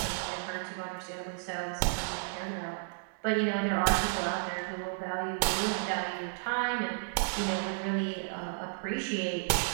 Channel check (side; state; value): left; silent; digital silence